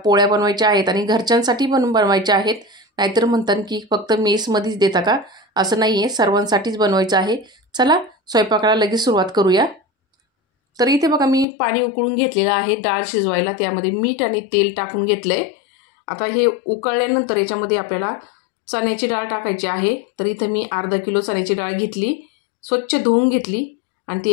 बनवायच्या आहेत आणि घरच्यांसाठी पण बनवायच्या आहेत. नाहीतर म्हणतात की फक्त मेसमध्येच देता का, असं नाही आहे, सर्वांसाठीच बनवायचं आहे. चला स्वयंपाकाला लगेच सुरुवात करूया. तर इथे बघा, मी पाणी उकळून घेतलेलं आहे डाळ शिजवायला. त्यामध्ये मीठ आणि तेल टाकून घेतलं आहे. आता हे उकळल्यानंतर याच्यामध्ये आपल्याला चण्याची डाळ टाकायची आहे. तर इथं मी अर्धा किलो चण्याची डाळ घेतली, स्वच्छ धुवून घेतली आणि ती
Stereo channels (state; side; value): drops out; right; at 11.5 s